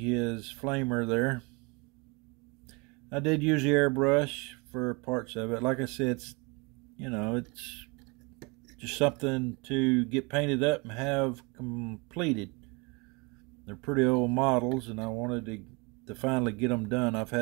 flamer there. I did use the airbrush for parts of it. Like I said, it's just something to get painted up and have completed. They're pretty old models, and I wanted to finally get them done. I've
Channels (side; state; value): left; quieter; 28.8 dB